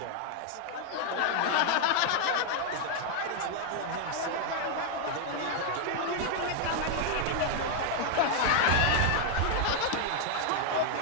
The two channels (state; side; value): different; both; correlation 0.00